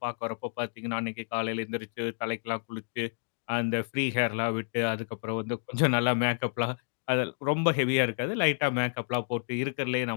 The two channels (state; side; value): silent; right; digital silence